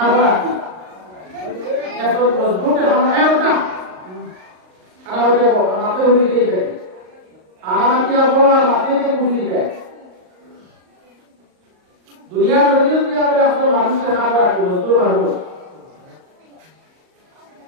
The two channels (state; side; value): late; left; 38 ms